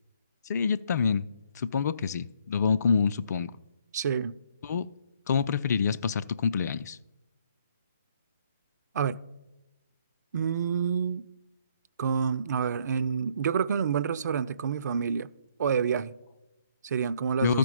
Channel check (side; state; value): both; inverted; correlation -0.65